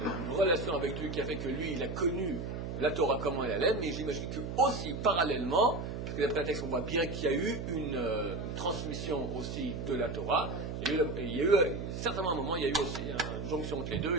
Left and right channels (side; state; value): right; noise; hum, 5 dB below the sound